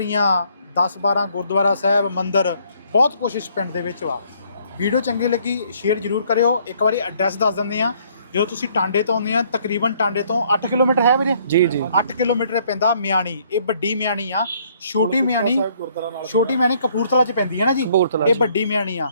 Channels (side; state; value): both; inverted; correlation -0.64